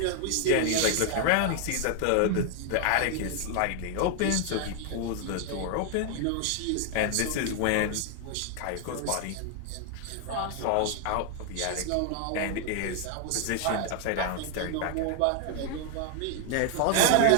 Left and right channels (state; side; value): different; both; correlation 0.00